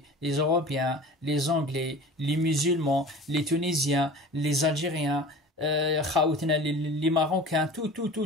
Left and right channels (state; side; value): normal; both; correlation 0.39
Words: les Européens, les Anglais, les musulmans, les Tunisiens, les Algériens, les Marocains, tout,